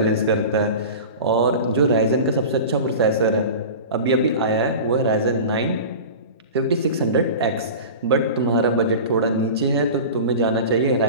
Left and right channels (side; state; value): both; inverted; correlation -0.33